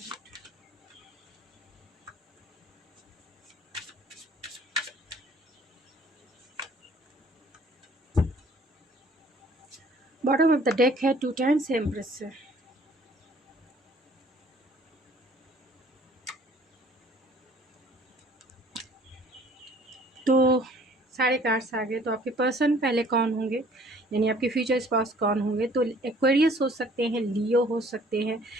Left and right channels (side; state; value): both; normal; correlation 0.55